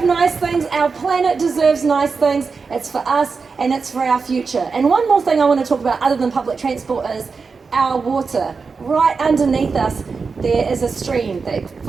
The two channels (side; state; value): left; quieter; 4.9 dB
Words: nice things, our planet deserves nice things, it's for us and it's for our future. And one more thing I want to talk about other than public transport is our water. Right underneath us there is a stream that